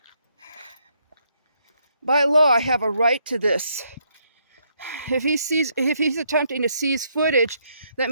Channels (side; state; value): both; inverted; correlation -0.74